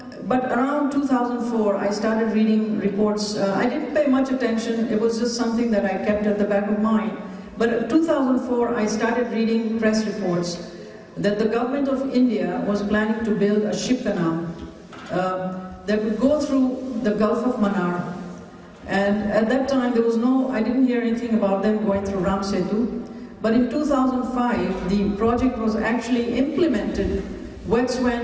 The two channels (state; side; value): identical; both; correlation 1.00